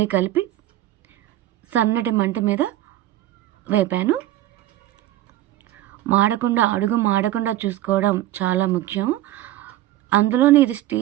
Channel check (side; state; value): left; quieter; 14.4 dB